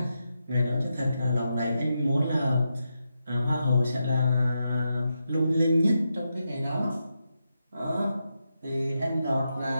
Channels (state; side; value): inverted; both; correlation -0.86